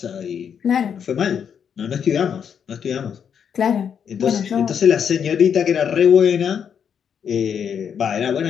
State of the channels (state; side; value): quieter; right; 7.7 dB